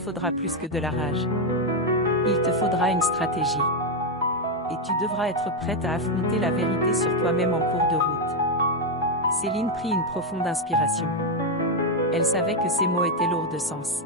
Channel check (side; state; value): both; normal; correlation 0.04